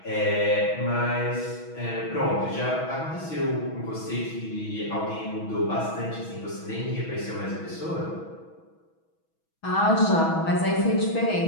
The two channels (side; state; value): right; late; 6.2 ms